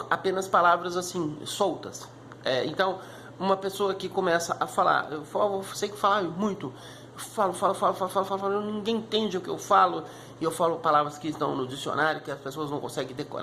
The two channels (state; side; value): identical; both; correlation 1.00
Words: apenas palavras assim soltas. Então, uma pessoa que começa a falar, eu sei que falar muito, falo, ninguém entende o que eu falo, e eu falo palavras que estão no dicionário, que as pessoas não conseguem